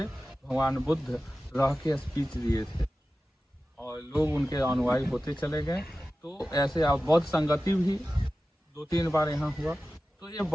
भगवान बुद्ध रह के स्पीच दिए थे और लोग उनके अनुयायी होते चले गए। तो ऐसे आप बौद्ध संगति भी 2-3 बार यहाँ हुआ। तो ये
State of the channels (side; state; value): both; normal; correlation 0.95